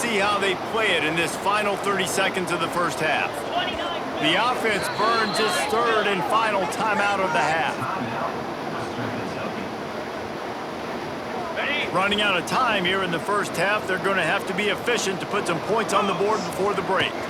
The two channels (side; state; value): both; identical; correlation 1.00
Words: how they play it in this final 30 seconds of the first half. The offense burns its 3rd and final timeout of the half. Running out of time here in the first half, they're going to have to be efficient to put some points on the board before the break.